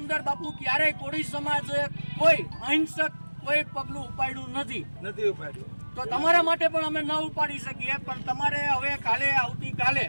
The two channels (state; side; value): inverted; both; correlation -1.00